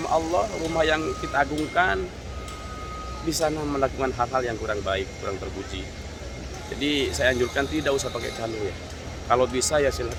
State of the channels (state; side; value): identical; both; correlation 1.00